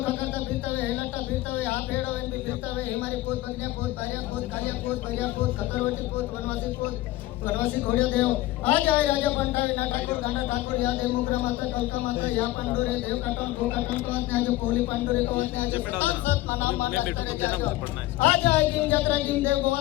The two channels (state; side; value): quieter; right; 16.9 dB